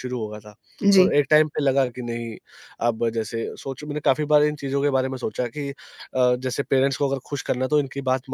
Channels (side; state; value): both; identical; correlation 1.00